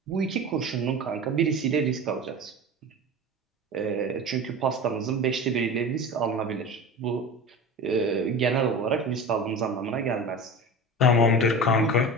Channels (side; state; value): both; normal; correlation 0.32